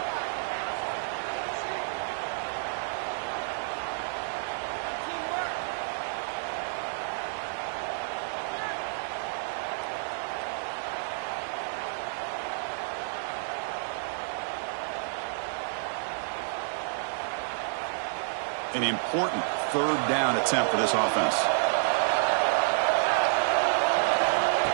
An important third down attempt for this offense.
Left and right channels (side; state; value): left; silent; digital silence